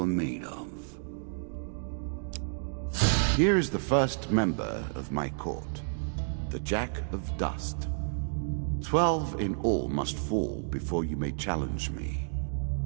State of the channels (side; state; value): left; silent; digital silence